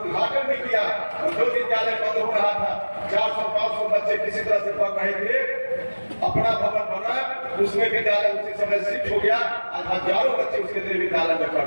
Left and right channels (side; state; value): both; inverted; correlation -1.00